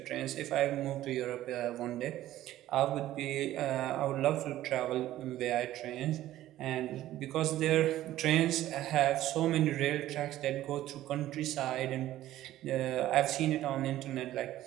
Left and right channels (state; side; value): quieter; left; 14.1 dB